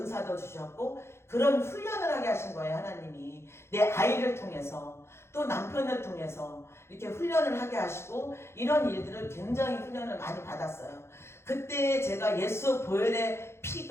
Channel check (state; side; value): late; right; 0.12 ms